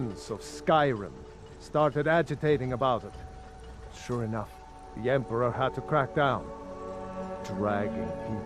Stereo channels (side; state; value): both; identical; correlation 1.00